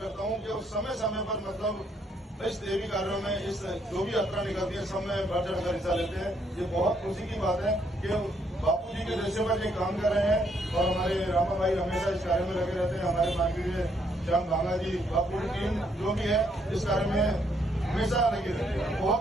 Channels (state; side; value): normal; both; correlation 0.72